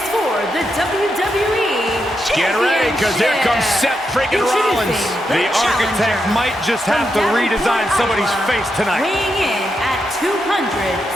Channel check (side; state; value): right; noise; hum, 29 dB below the sound